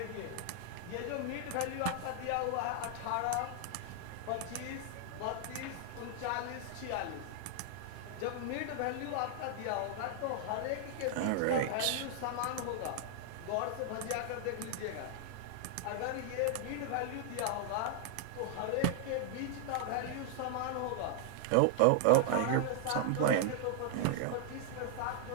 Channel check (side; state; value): both; different; correlation 0.00